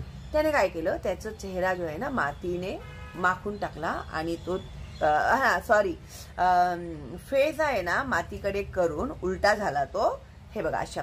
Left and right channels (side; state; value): both; identical; correlation 1.00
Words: त्याने काय केलं, त्याचा चेहरा जो आहे ना मातीने माखून टाकला आणि तो फेस आहे ना मातीकडे करून उलटा झाला तो, हे बघा अशा